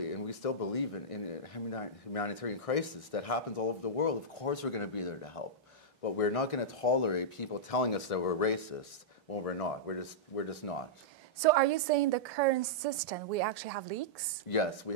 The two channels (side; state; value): both; normal; correlation -0.11